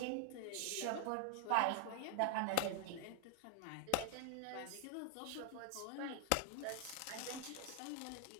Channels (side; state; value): both; different; correlation 0.00